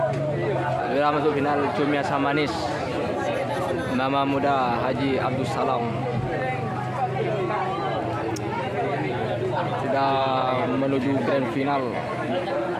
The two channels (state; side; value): identical; both; correlation 1.00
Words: Masuk final cumi asam manis Mama Muda Haji Abdul Salam sudah menuju grand final